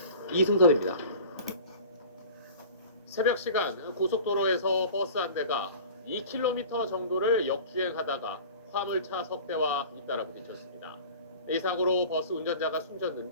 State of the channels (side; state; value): both; inverted; correlation -0.40